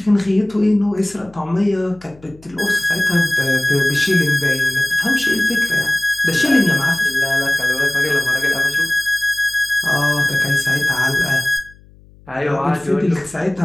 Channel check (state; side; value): noise; left; hum, 26 dB below the sound